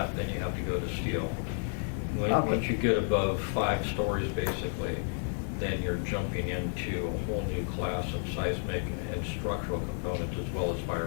then you have to go to steel. Okay. Once you get above 5 stories, basically, then you're jumping into a whole new class of seismic and structural components as well as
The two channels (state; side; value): silent; right; 57 dB below the other